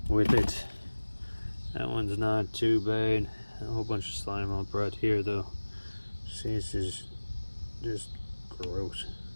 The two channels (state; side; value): inverted; both; correlation -1.00